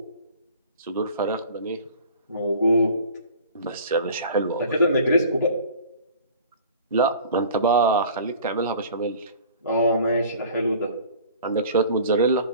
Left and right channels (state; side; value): inverted; both; correlation -0.45